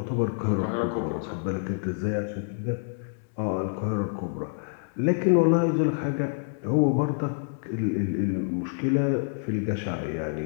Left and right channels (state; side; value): silent; right; digital silence